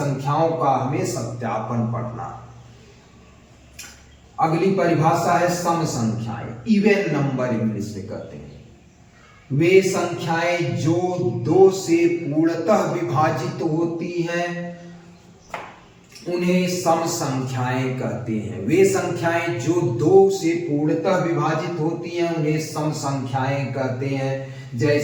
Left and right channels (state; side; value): identical; both; correlation 1.00